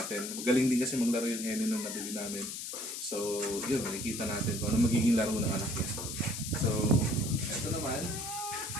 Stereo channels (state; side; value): noise; left; hiss, 6 dB below the sound